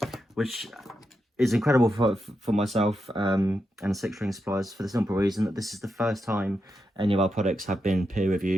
which is incredible for myself and Six String Supplies, for the simple reason that this is the first time any of our products have been peer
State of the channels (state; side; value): normal; both; correlation 0.86